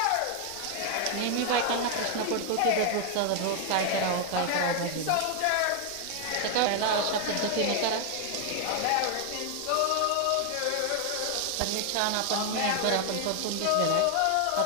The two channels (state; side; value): different; both; correlation 0.00